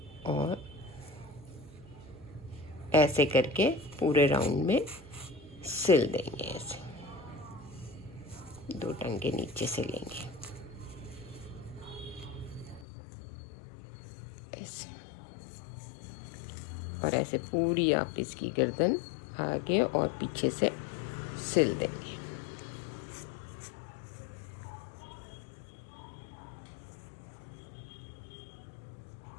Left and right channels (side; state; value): right; drops out; at 12.9 s